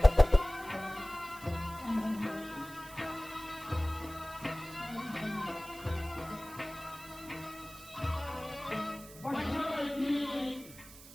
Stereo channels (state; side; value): noise; right; hiss, 18 dB below the sound